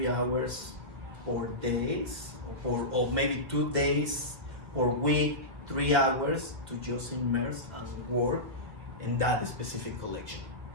hours per days, or maybe 2 days per week, 3 hours to just immerse and work in that specific collection.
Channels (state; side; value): late; left; 1.7 ms